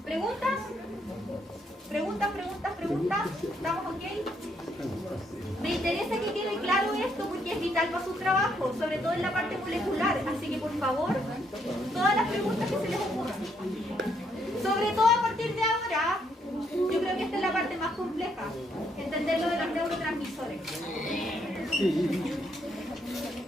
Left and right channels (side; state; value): both; normal; correlation 0.73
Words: ¿Preguntas? ¿Preguntas? ¿Estamos ok? Me interesa que quede claro esto porque es vital para su trabajo, sobre todo en la parte molecular. Así que, por favor, todas las preguntas que se les ocurran. Sobre todo a partir de ahora, yo creo que esta es la parte más compleja, entender lo de los neurotransmisores.